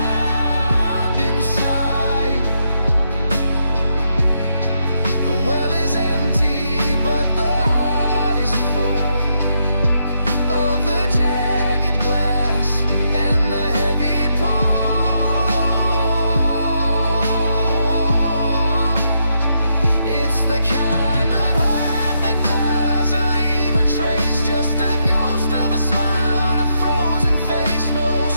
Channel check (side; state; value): both; inverted; correlation -0.79